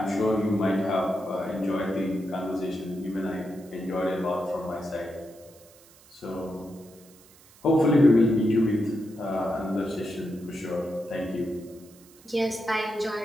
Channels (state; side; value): noise; right; hiss, 25 dB below the sound